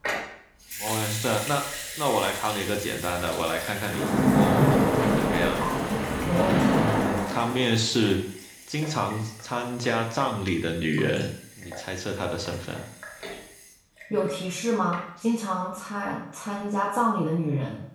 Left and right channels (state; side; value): identical; both; correlation 1.00